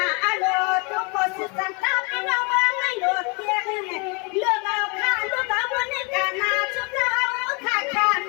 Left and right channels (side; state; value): right; quieter; 32.2 dB